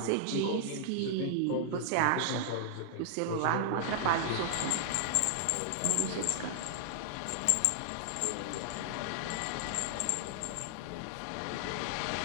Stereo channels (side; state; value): both; different; correlation -0.01